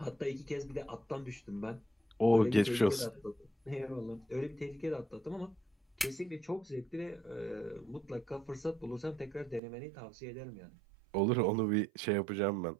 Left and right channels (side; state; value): left; drops out; at 9.6 s